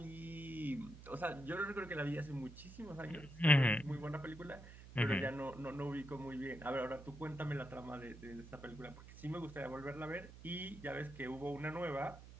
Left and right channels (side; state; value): right; noise; hum, 15 dB below the sound